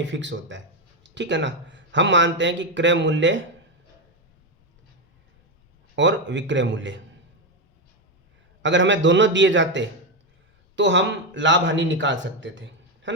फिक्स होता है, ठीक है ना। हम मानते हैं कि क्रय मूल्य और विक्रय मूल्य अगर हमें दोनों दिए जाते तो हम लाभ हानि निकाल सकते थे, है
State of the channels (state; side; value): normal; both; correlation 0.08